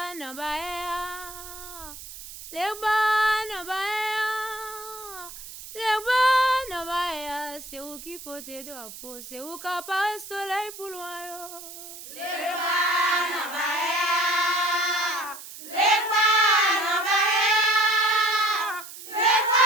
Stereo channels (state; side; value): noise; right; hiss, 13 dB below the sound